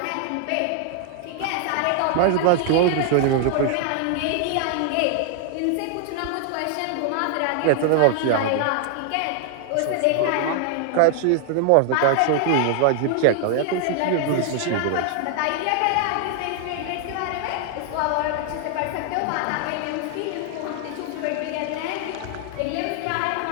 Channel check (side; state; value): both; different; correlation 0.00